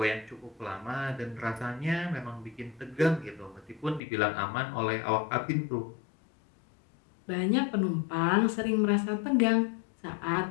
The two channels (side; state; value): right; drops out; at 4.0 s